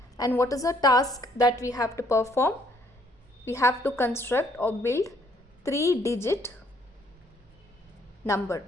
And what is the task that we have to perform? We have to construct or build 3-digit number,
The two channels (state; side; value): normal; both; correlation 0.66